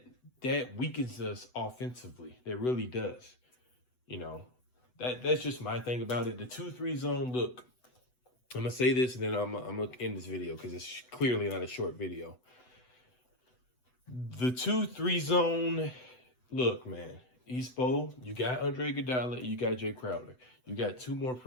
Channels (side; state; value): right; late; 8.0 ms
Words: weakens us offensively. That really does. You know, that's just my thing about it. The 2-3 zone, look, I'm going to say this and then I'm going to end this video because it's clearly not a short video. The 2-3 zone, look, man, Espo, you got Andre Iguodala, you got Jay Crowder. You got 2 more